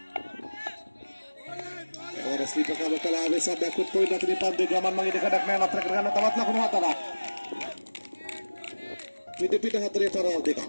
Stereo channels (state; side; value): inverted; both; correlation -1.00